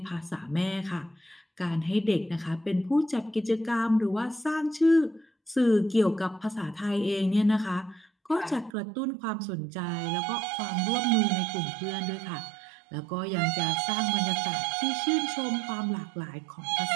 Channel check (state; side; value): drops out; left; at 8.7 s